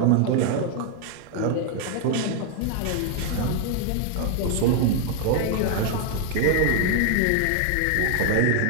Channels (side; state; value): both; different; correlation 0.00